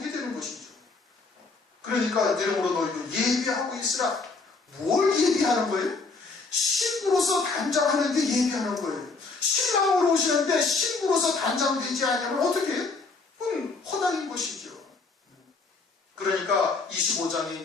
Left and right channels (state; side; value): quieter; right; 4.0 dB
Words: 되는 것이죠. 그러니까 이러므로 너희도 예비하고 있으라. 뭘 예비하는 거예요? 신부로서 단장하는데 예비하는 거예요. 신랑으로 오시는데 신부로서 단장되지 않으면 어떻게 해요? 그건 허당인 것이죠. 그러니까 25장에